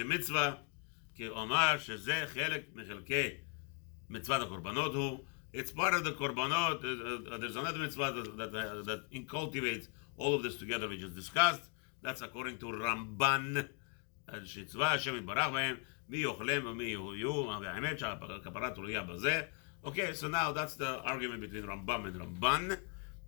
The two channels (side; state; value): right; quieter; 36.0 dB